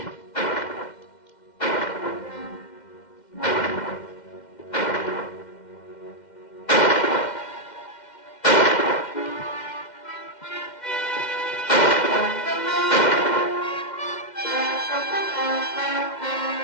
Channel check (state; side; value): late; right; 2.1 ms